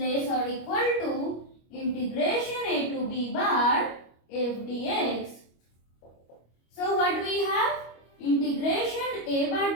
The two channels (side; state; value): right; late; 25 ms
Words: or equal to integration a to b bar f dx. So what we have? Integration a